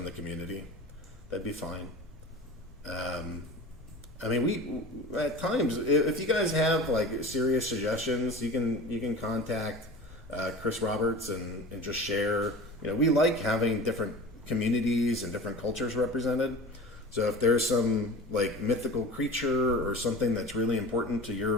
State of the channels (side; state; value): left; noise; rumble, 20 dB below the sound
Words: the community. That'd be fine. I mean, we at times, if you guys have like serious suggestions, you can contact Chris Roberts and just share. You know, we like having different communities and different cultures represented. So if there's some like mythical creature or something that's really important to